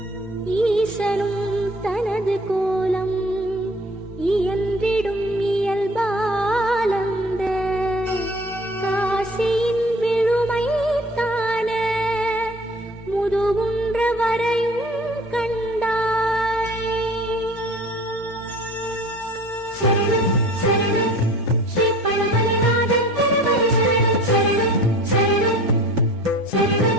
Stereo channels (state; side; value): normal; both; correlation 0.45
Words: ஈசனும் தனது கோலம் இயன்றிடும் இயல்பாலந்த காசியின் விழுமை தான முதுகுன்ற வரையும் கண்டாய். சரணம் சரணம் ஸ்ரீ பழமலைநாதன் திருவடி சரணம் சரணம்